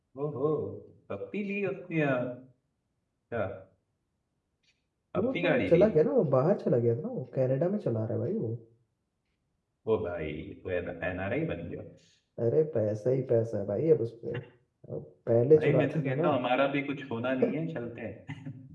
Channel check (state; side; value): identical; both; correlation 1.00